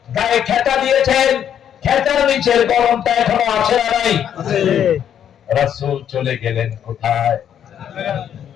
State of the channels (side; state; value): right; quieter; 9.4 dB